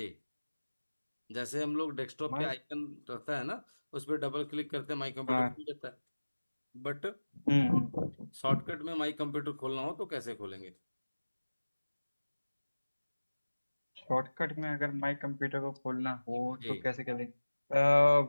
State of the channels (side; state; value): both; inverted; correlation -1.00